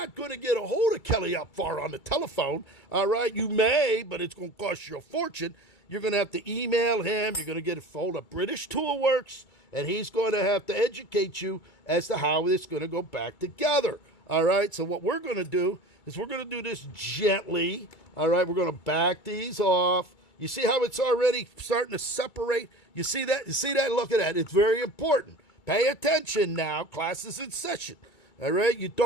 going to get a hold of Kelly Opvar on the telephone. All right, you may, but it's going to cost you a fortune. You're going to have to email him. You're going to get a hold of British Toolworks, and he's going to have to educate you as to how it's going to go back together. All right, so what we're going to do is we're going to do this gently. All right, we're going to back these off. You see how it's already starting to separate? You see that? You see that? Look at that. It's very important. Pay attention now. Class is in session. All right, you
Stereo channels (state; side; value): late; right; 2.2 ms